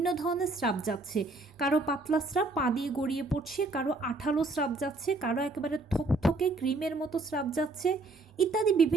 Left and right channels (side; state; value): left; quieter; 3.1 dB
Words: ধরনের স্রাব যাচ্ছে, কারো পাতলা স্রাব পা দিয়ে গড়িয়ে পড়ছে, কারো আঠালো স্রাব যাচ্ছে, কারো একেবারে থকথকে ক্রিমের মতো স্রাব যাচ্ছে, ইত্যাদি